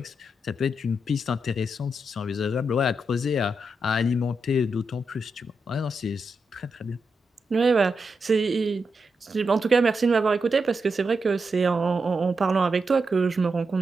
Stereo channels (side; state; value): both; normal; correlation 0.85